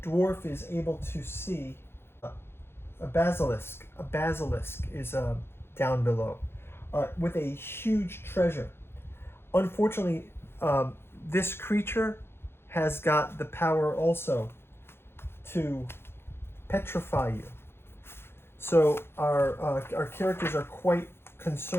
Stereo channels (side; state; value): right; late; 0.11 ms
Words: dwarf is able to see a basilisk. A basilisk is down below with a huge treasure. Unfortunately, this creature has got the power also to petrify you. So our characters are quite